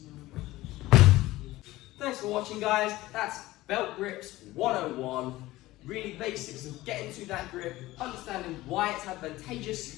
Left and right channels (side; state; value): right; quieter; 17.7 dB